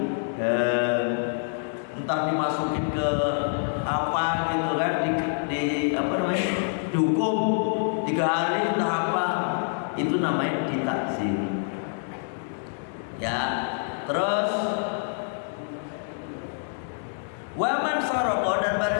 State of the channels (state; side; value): silent; right; digital silence